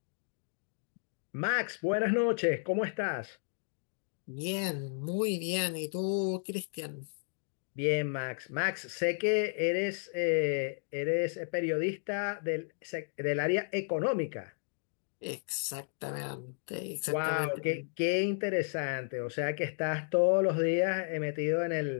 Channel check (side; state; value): right; silent; digital silence